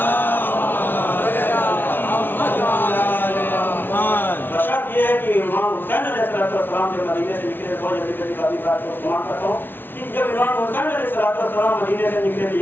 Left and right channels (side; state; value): right; late; 0.099 ms